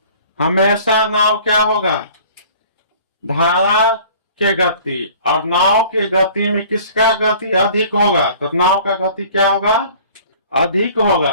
हमेशा नाव क्या होगा? धारा के गति, और नाव के गति में किसका गति अधिक होगा? तो नाव का गति क्या होगा? अधिक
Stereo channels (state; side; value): inverted; both; correlation -0.49